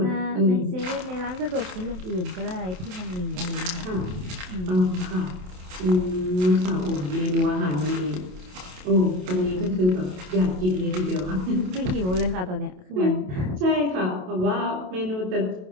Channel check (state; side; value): late; left; 27 ms